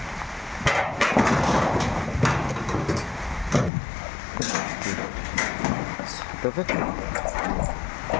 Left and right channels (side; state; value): right; drops out; at 3.7 s